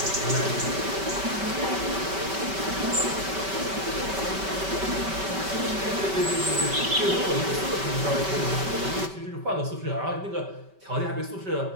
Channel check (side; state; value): left; late; 5.2 ms